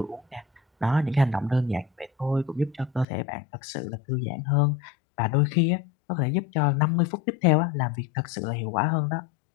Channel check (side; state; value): right; drops out; at 3.1 s